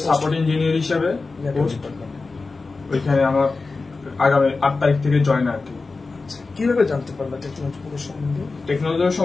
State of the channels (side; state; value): right; quieter; 3.9 dB